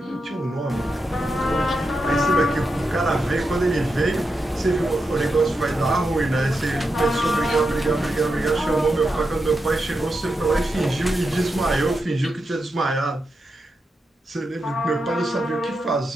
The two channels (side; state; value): both; normal; correlation 0.87